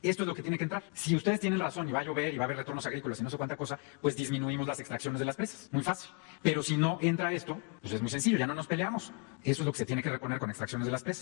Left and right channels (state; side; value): quieter; right; 34.9 dB